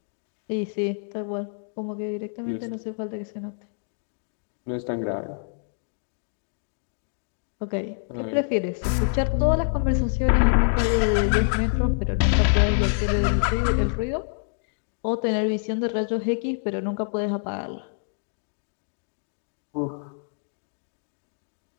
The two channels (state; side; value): silent; right; digital silence